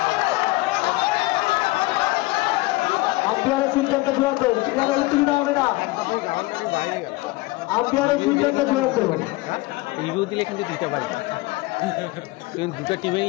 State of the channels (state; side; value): quieter; right; 21.0 dB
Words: আম্পায়ারের সিদ্ধান্ত চূড়ান্ত ক্রীড়ার উত্তীর্ণ হবে না আম্পায়ারের সিদ্ধান্ত চূড়ান্ত রিভিউ দিলে কিন্তু দিতে পারে কিন্তু দুটো